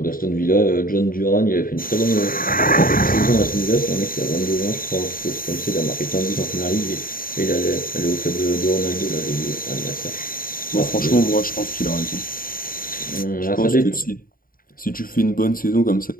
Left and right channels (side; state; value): right; late; 0.41 ms